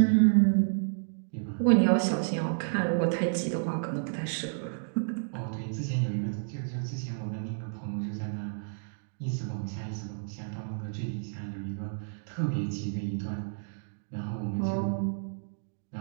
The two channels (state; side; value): silent; left; digital silence